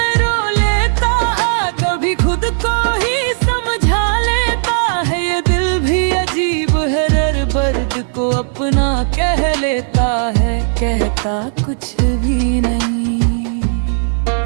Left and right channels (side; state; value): left; silent; 67 dB below the other